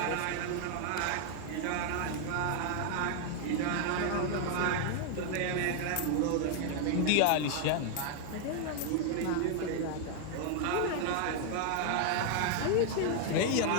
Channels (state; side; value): different; both; correlation 0.00